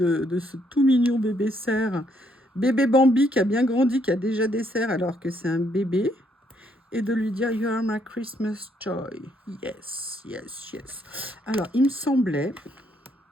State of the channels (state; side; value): normal; both; correlation 0.71